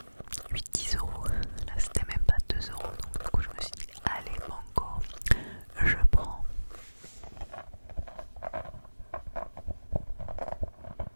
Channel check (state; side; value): inverted; both; correlation -1.00